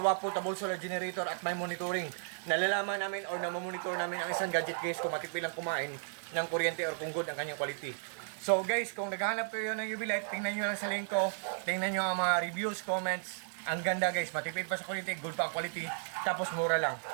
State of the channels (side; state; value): left; silent; digital silence